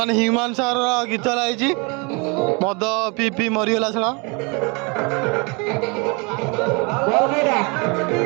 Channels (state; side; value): quieter; left; 30.6 dB